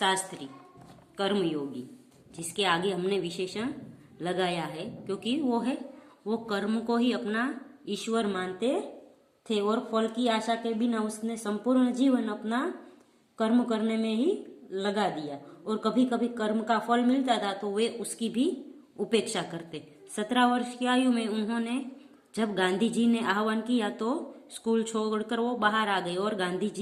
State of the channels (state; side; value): identical; both; correlation 1.00